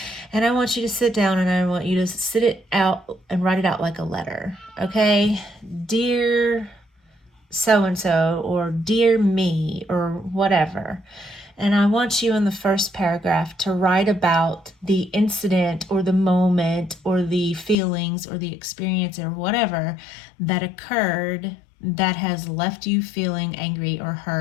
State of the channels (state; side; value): drops out; right; at 17.8 s